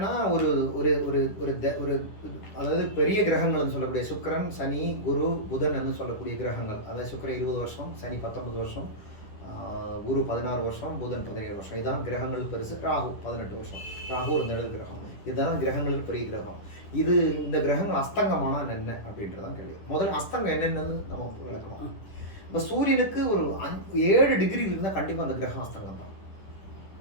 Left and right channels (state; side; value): late; right; 10 ms